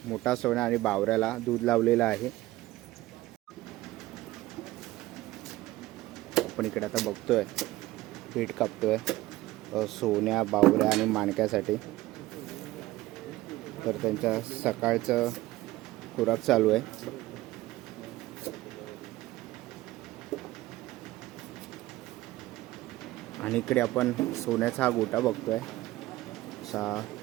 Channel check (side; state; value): left; quieter; 17.4 dB